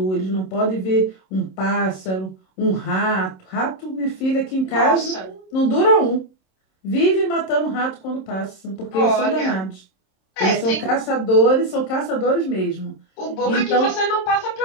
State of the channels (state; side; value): late; right; 27 ms